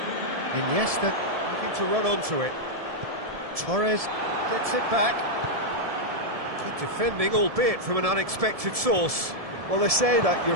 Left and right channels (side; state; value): left; late; 1.7 ms